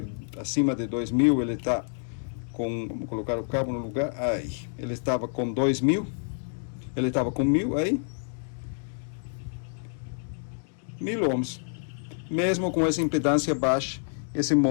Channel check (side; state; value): right; silent; digital silence